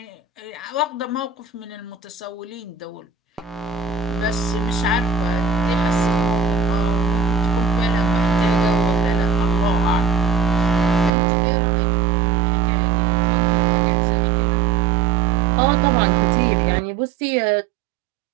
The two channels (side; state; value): left; drops out; at 11.1 s